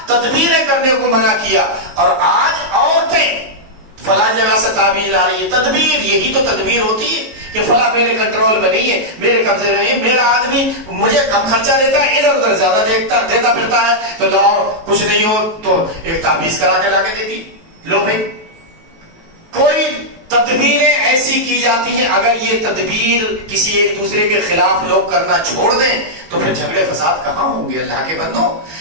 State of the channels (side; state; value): left; late; 19 ms